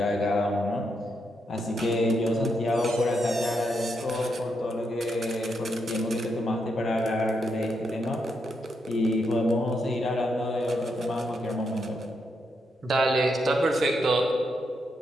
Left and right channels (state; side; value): normal; both; correlation 0.81